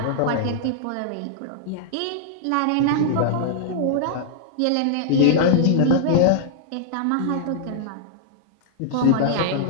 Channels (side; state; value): both; different; correlation -0.01